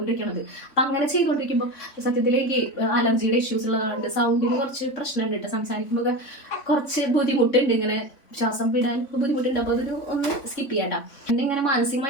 അപ്പം അങ്ങനെ ചെയ്തുകൊണ്ടിരിക്കുമ്പോൾ സത്യത്തിൽ എനിക്ക് അലർജിയുടെ ഇഷ്യൂസ് ഉള്ളതുകൊണ്ട് സൗണ്ടിന് കുറച്ച് പ്രശ്നമുണ്ട് കേട്ടോ. സംസാരിക്കുമ്പോൾ കുറച്ച് ബുദ്ധിമുട്ടുണ്ട്, ഇങ്ങനെ ശ്വാസം വിടാൻ ബുദ്ധിമുട്ടുണ്ട്. അപ്പോൾ അതൊരു ഒന്ന് സ്കിപ്പ് ചെയ്യാട്ടാ. എന്നെ ഇങ്ങനെ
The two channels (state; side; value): late; right; 3.5 ms